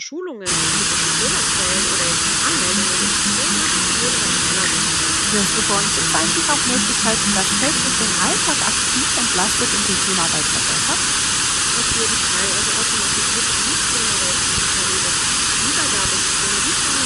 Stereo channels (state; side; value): identical; both; correlation 1.00